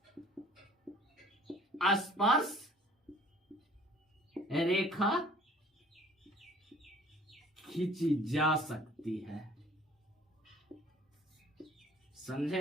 स्पर्श रेखा खींची जा सकती है,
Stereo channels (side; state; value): both; normal; correlation 0.53